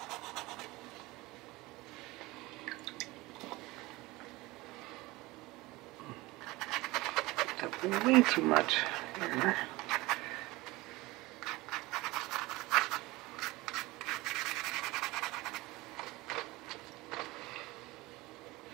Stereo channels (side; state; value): left; quieter; 21.0 dB